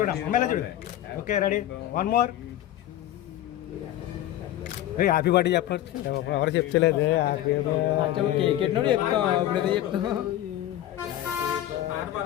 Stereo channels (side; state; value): right; quieter; 13.1 dB